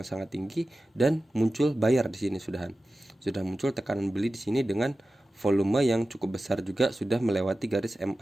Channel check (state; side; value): normal; both; correlation 0.95